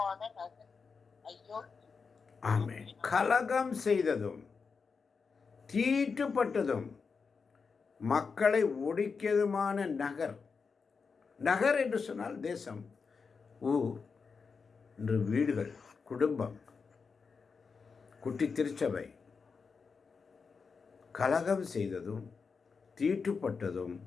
நகர் ஐயோ. ஆமென். கலகம் செய்ததும் தீட்டுப்பட்டதும் மக்களை ஒடுக்கியதுமான நகர். நகர் என்று சொன்னால் தேசம், ஊர் என்று வீடுகள், குடும்பம், குட்டி திருச்சபை. கலகம் செய்ததும் தீட்டுப்பட்டதும்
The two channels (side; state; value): right; quieter; 5.2 dB